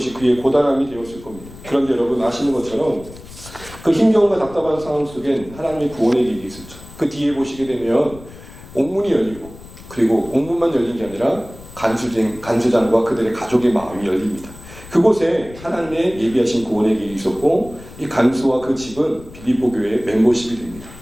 그의 고단함이 되었을 겁니다. 그런데 여러분 아시는 것처럼 그 힘겨움과 답답한 상황 속엔 하나님의 구원의 길이 있었죠. 그 뒤에 보시게 되면 옥문이 열리고 그리고 옥문만 열린 게 아니라 간수장과 그들의 가족의 마음이 열립니다. 그곳에 하나님의 예비하신 구원의 길이 있었고 이 간수와 그 집은 빌립보 교회의 멤버십이 됩니다.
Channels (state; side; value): noise; left; rumble, 18 dB below the sound